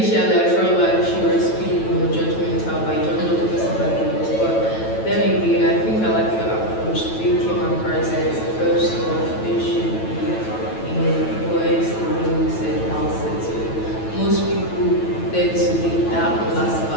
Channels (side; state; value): right; late; 9.1 ms